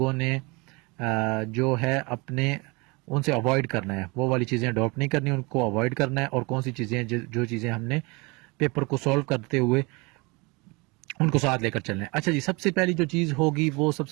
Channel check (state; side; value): quieter; left; 27.0 dB